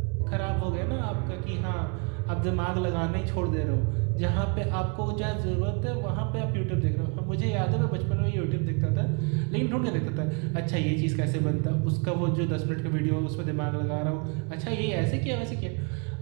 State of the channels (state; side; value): quieter; left; 35.0 dB